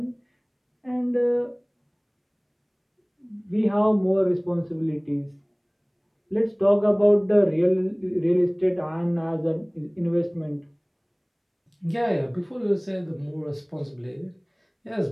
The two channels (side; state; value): both; identical; correlation 1.00